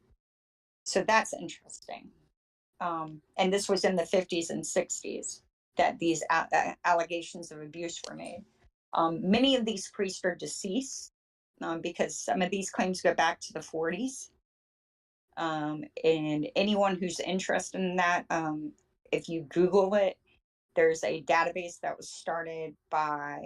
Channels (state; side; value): identical; both; correlation 1.00